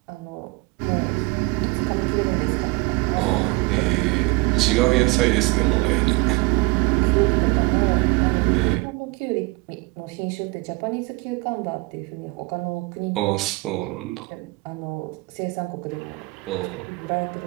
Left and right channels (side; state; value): left; quieter; 24.8 dB